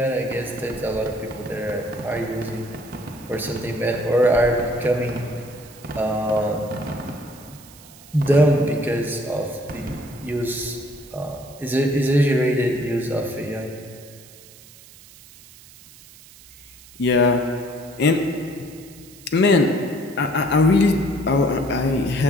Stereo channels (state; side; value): noise; right; hiss, 22 dB below the sound